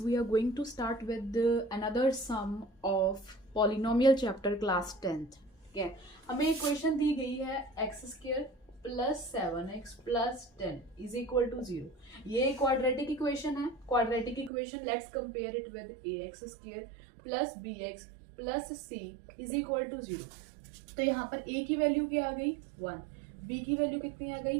are going to start with another sum of polynomial chapter class 10th. ठीक है, हमें एक क्वेश्चन दी गई है x square plus 7x plus 10 is equal to 0। ये क्वाड्रेटिक इक्वेशन है। Quadratic equation let's compare it with ax square plus bx plus c is equal to 0। तो यहाँ पर a की वैल्यू क्या आ गई 1, b की वैल्यू कितनी आ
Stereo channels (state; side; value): drops out; left; at 14.5 s